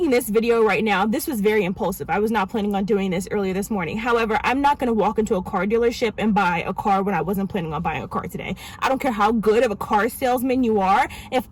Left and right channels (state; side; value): identical; both; correlation 1.00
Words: this video right now, this was very impulsive. I was not planning on doing this earlier this morning. However, I'm not going to walk into a car dealership and buy a car when I wasn't planning on buying a car today. I don't care how good of a car salesman you are. If